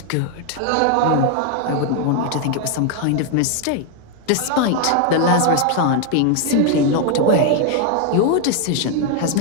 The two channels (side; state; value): both; different; correlation 0.01